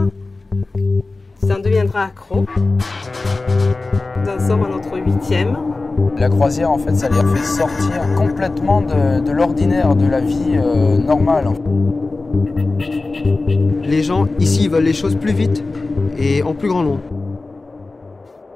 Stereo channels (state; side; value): quieter; right; 3.4 dB